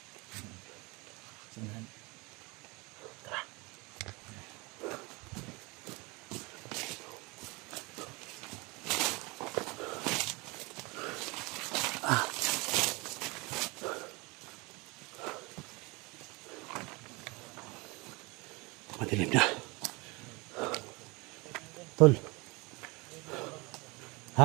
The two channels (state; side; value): quieter; left; 26.1 dB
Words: Sinahan. Madilim na. Tol.